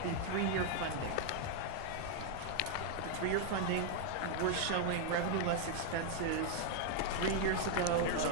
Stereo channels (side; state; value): both; different; correlation 0.00